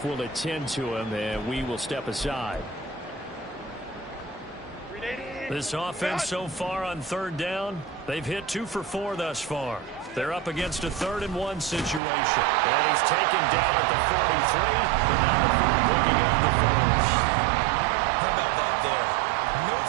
will attend to him, and we will step aside. This offense so far on 3rd down, they've hit 2 for 4 thus far. They're up against a 3rd and 1 situation. And he's taken down at the 43, and now the 4 picking up the 1st. How about that there? No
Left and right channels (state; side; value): drops out; left; at 12.0 s